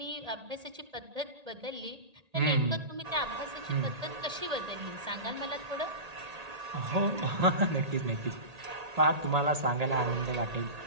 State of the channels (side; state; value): left; late; 1.8 ms